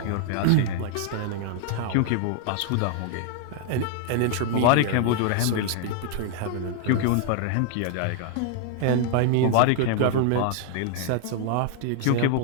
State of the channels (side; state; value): both; different; correlation 0.00